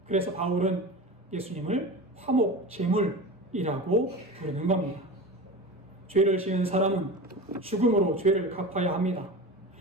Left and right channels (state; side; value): normal; both; correlation 0.29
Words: 그래서 바울은 예수님을 화목제물이라고 부르는 겁니다. 죄를 지은 사람은 죽음으로 죄를 갚아야 합니다.